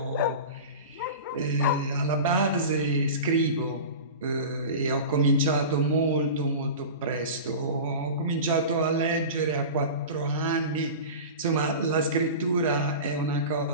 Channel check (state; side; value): inverted; both; correlation -0.32